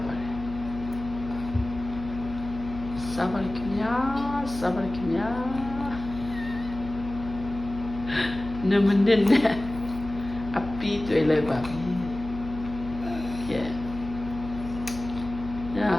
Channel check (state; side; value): noise; left; hum, 11 dB below the sound